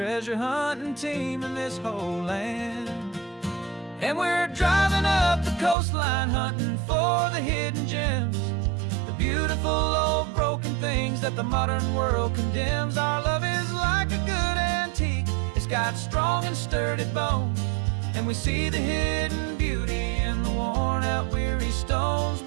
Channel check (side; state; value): left; drops out; at 5.8 s